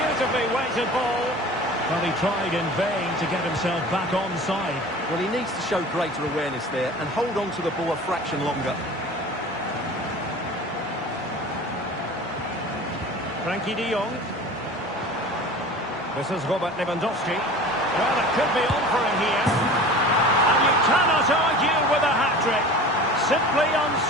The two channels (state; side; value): normal; both; correlation 0.39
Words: weighted ball. Well, he tried in vain to get himself back onside. Well, he needs to show greater awareness there and hold on to the ball a fraction longer. Frankie de Jong. This is Robert Lewandowski. Well, it could be on for him here. And you cannot argue with a hat-trick. Simply